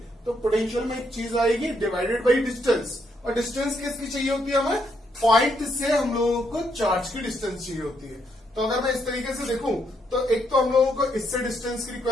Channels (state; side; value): normal; both; correlation 0.76